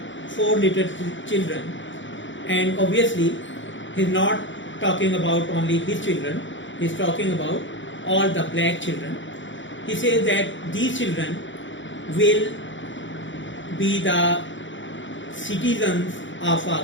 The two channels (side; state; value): right; late; 0.55 ms